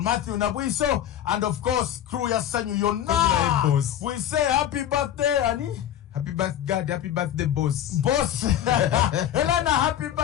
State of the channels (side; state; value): right; quieter; 10.9 dB